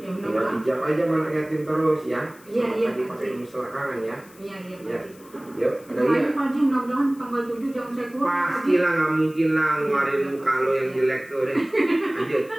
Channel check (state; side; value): noise; left; hiss, 25 dB below the sound